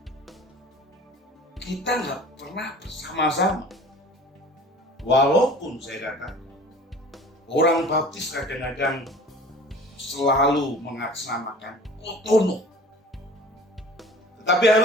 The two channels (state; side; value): normal; both; correlation 0.44